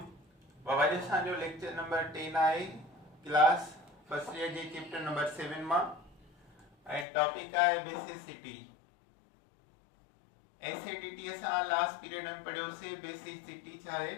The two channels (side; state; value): right; drops out; at 7.1 s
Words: बाबा जी असांजो लेक्चर नंबर 10 आहे क्लास फर्स्ट ईयर जे चैप्टर नंबर 7 मां ऐं टॉपिक आहे बेसिसिटी। एसिडिटी असां लास्ट पीरियड में पढ़ियोसीं। बेसिसिटी छा आहे?